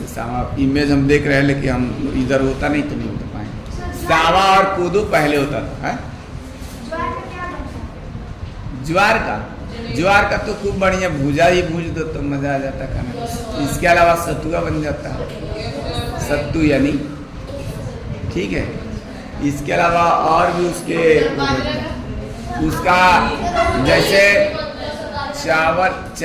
सावा इमेज हम देख रहे हैं, लेकिन हम इधर होता नहीं तो नहीं होता पाएंगे। सावा और कोदो पहले होता था, है? ज्वार का तो खूब बढ़िया भूजा ही भूज दो तो मजा आ जाता खाने। इसके अलावा सतुआ बन जाता है, सत्तू यानी, ठीक है। इसके अलावा और भी उसका जैसे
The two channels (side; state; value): both; identical; correlation 1.00